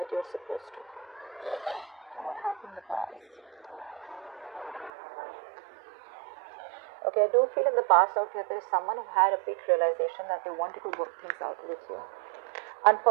you're supposed to. What happened in the past? Okay, I do feel in the past out here there is someone who had a big realization that they wanted to work things out with you.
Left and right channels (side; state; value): left; drops out; at 4.9 s